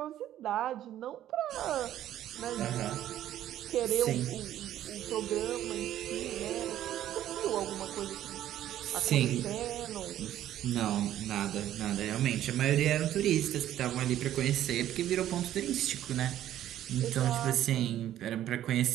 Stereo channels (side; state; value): left; quieter; 12.2 dB